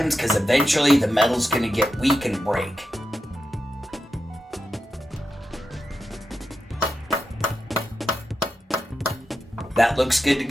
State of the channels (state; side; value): normal; both; correlation 0.89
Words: because eventually the metal's going to get weak and break. That looks good to